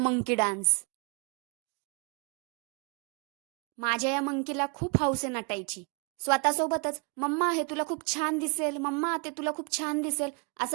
डान्स. माझ्या या मंकीला खूप हौस आहे नटायची. स्वतःसोबतच मम्मा हे तुला खूप छान दिसेल, मम्मा ते तुला खूप छान दिसेल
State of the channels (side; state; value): left; quieter; 34.6 dB